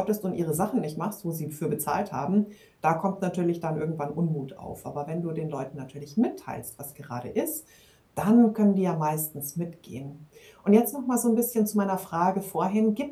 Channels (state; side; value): identical; both; correlation 1.00